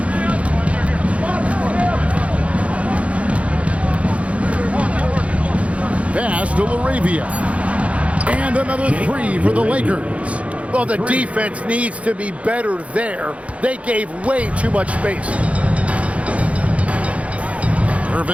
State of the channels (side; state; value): left; late; 0.064 ms